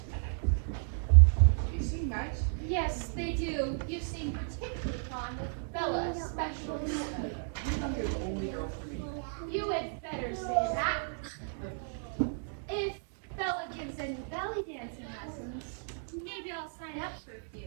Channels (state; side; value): silent; left; digital silence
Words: They seem nice. Yes, they do. You seem particularly fond of Bella, especially. I'm your only girl for me. You had better say that. If Bella gives any belly dancing lessons, maybe I'll sign up for a